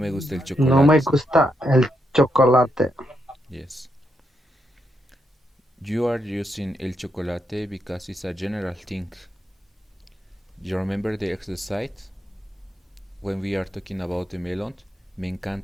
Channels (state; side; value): normal; both; correlation 0.81